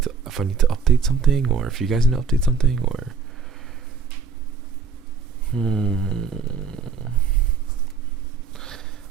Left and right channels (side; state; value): left; quieter; 5.4 dB